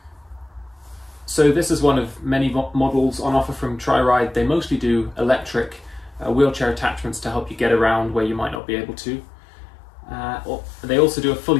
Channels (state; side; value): drops out; right; at 8.6 s